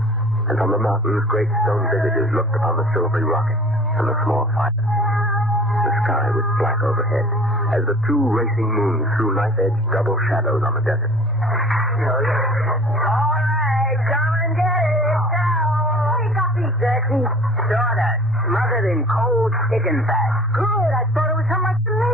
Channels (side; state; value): both; normal; correlation 0.47